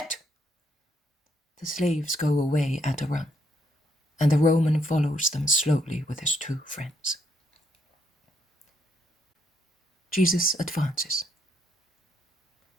The slaves go away at a run, and the Roman follows them slowly with his two friends. Jesus advances.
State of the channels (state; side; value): normal; both; correlation 0.74